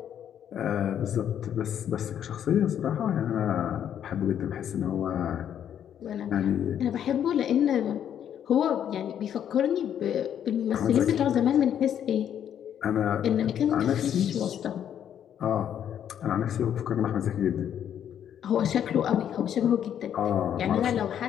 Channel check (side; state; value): right; quieter; 9.5 dB